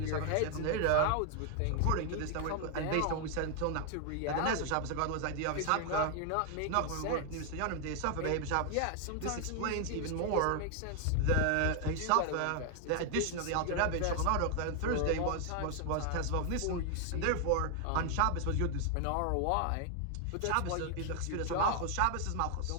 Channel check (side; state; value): both; different; correlation 0.00